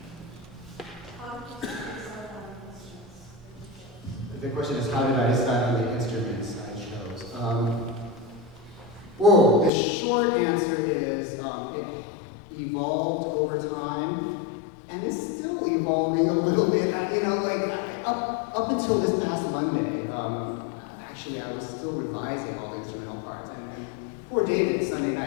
The question is, how did I decide on the instruments I chose? Whoa, the short answer is it evolved over time, and it's still evolving a little bit. Up until this past Monday, actually I was still revising all the instrumental parts, and poor David Sunday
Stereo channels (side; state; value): right; drops out; at 9.7 s